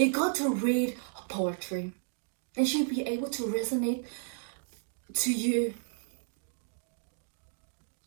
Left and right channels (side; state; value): left; silent; digital silence